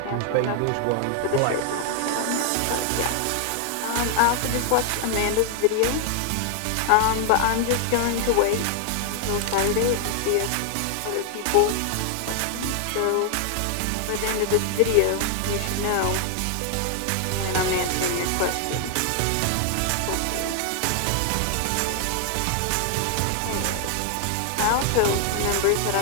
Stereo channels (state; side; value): different; both; correlation 0.00